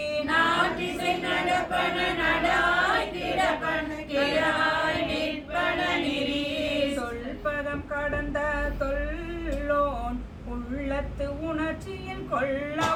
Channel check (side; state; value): both; identical; correlation 1.00